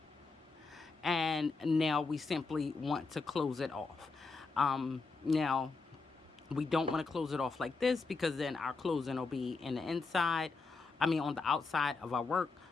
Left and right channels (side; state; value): right; quieter; 4.1 dB